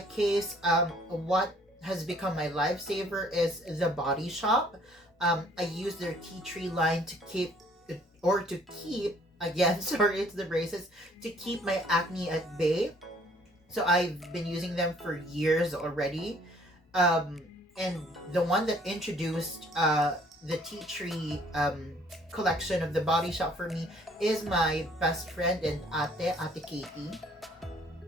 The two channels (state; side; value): normal; both; correlation 0.59